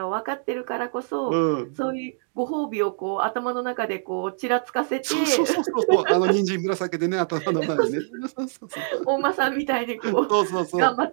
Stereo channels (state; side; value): silent; left; digital silence